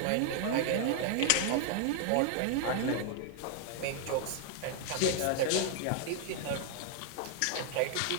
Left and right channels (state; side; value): different; both; correlation 0.00